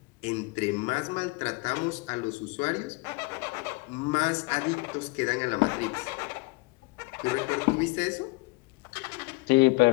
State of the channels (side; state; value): right; quieter; 25.6 dB